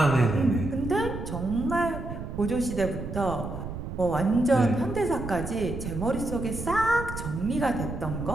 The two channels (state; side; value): noise; right; rumble, 7 dB below the sound